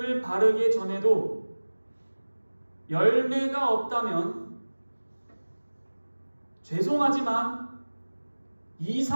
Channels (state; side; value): inverted; both; correlation -1.00